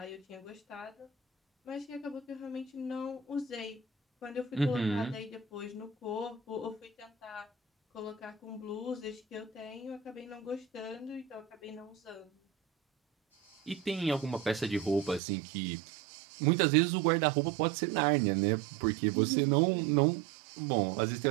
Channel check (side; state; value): left; drops out; at 15.2 s